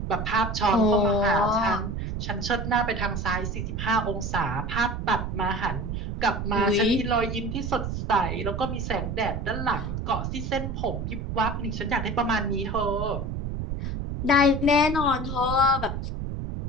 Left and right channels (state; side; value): noise; right; rumble, 4 dB below the sound